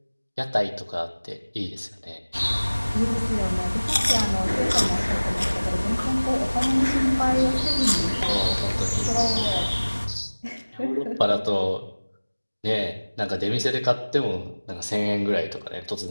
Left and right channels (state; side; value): inverted; both; correlation -1.00